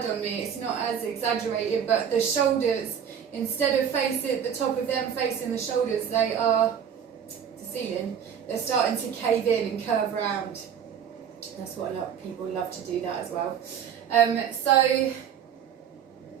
on me, it's not as exaggerated, but the shoulders, instead of facing the top of them facing the shoulders, they are the ceiling. They're starting to cave in and curve around. That's what a lot of people love to do that as well. So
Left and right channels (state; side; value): quieter; left; 8.3 dB